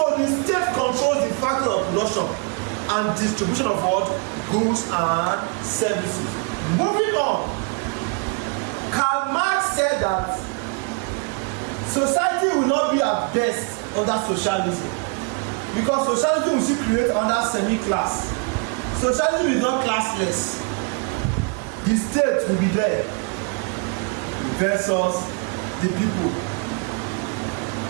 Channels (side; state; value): left; quieter; 33.8 dB